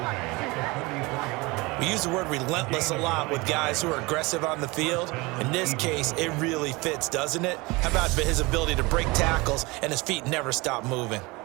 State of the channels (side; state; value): left; quieter; 24.1 dB